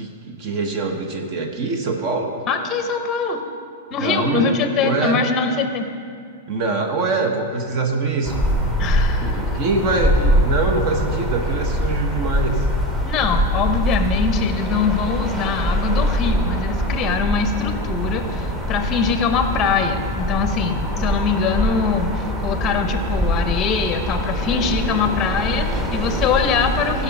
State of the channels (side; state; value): both; normal; correlation 0.23